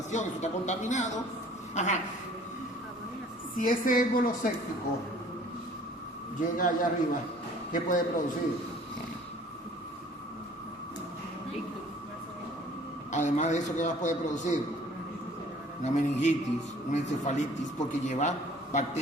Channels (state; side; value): normal; both; correlation 0.53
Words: eso está contaminado. Ajá. Si ese émbolo séptico llega allá arriba, ¿qué puede producir? Además de eso, ¿qué más puede producir? Una meningitis, una encefalitis, porque lleva